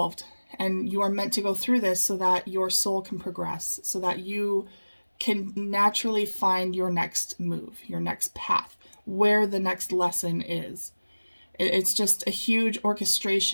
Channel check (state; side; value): inverted; both; correlation -1.00